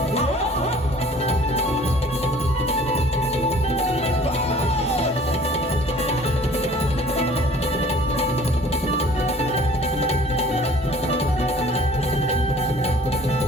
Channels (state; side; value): normal; both; correlation 0.51